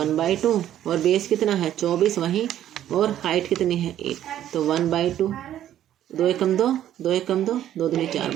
और बेस कितना है 24 वहीं, और हाइट कितनी है 8, तो 1/2, 2 एकम 2, 2 एकम 2, 2 दूनी 4,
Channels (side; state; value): left; quieter; 11.6 dB